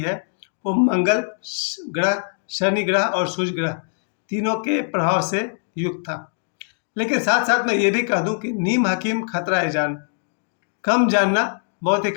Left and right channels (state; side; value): silent; right; digital silence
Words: वो मंगल ग्रह, शनि ग्रह और सूर्य ग्रह तीनों के प्रभाव से युक्त था। लेकिन साथ साथ मैं ये भी कह दूं कि नीम हकीम खतरा है जान, कम जानना बहुत ही